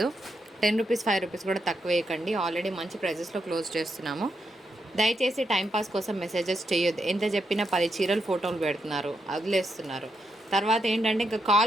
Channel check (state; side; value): normal; both; correlation 0.82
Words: 10 రూపీస్ 5 రూపీస్ కూడా తక్కువ వేయకండి. ఆల్రెడీ మంచి ప్రైజెస్లో క్లోజ్ చేస్తున్నాము. దయచేసి టైంపాస్ కోసం మెసేజెస్ చేయొద్దు. ఎంత చెప్పినా 10 చీరలు ఫోటోలు పెడుతున్నారు, వదిలేస్తున్నారు. తర్వాత ఏంటంటే ఇంకా